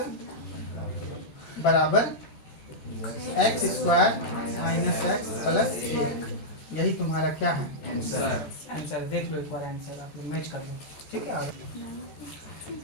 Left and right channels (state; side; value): late; right; 13 ms